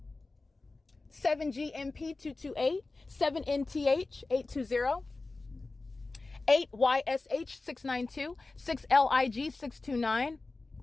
7GMP228, 7NTH820, 8YSH692, 6LIG629.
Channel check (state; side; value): quieter; right; 3.4 dB